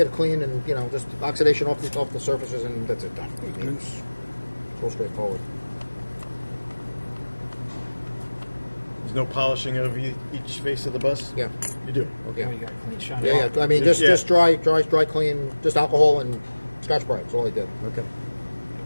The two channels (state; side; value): inverted; both; correlation -1.00